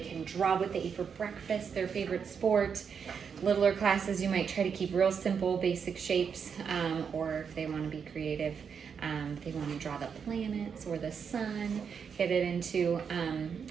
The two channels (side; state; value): left; quieter; 6.7 dB